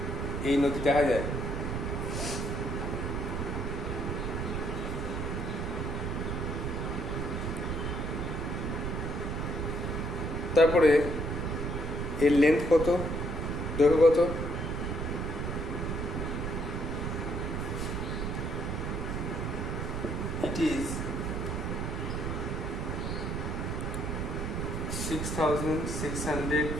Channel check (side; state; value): right; noise; rumble, 2 dB below the sound